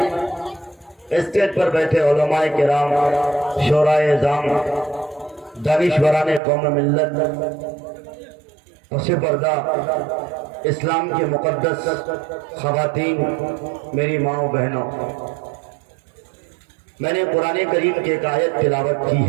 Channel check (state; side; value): drops out; left; at 6.4 s